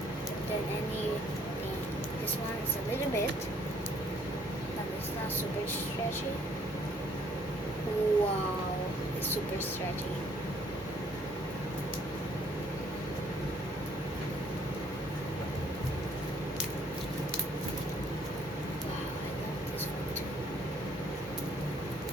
Then anything. This one is a little bit. But it's not super stretchy. Wow, it's super stretchy.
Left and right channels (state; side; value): normal; both; correlation 0.63